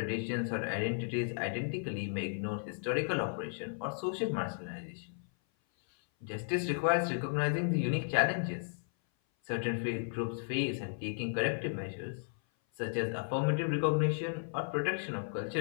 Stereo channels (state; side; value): silent; right; 55 dB below the other